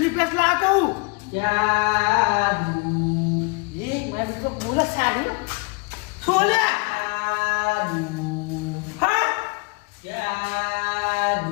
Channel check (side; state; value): right; quieter; 30.0 dB